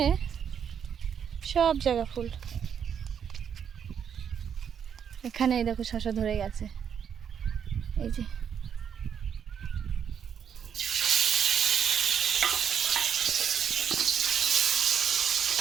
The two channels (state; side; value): quieter; left; 7.9 dB